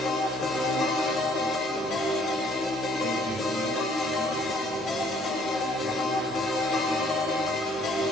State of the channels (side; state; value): both; normal; correlation 0.61